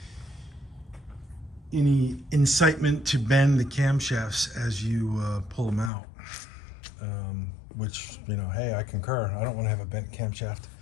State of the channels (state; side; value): drops out; right; at 5.9 s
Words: any incitement to bend the camshafts as you pull them out. Which, hey, I concur. I don't want to have a bent camshaft.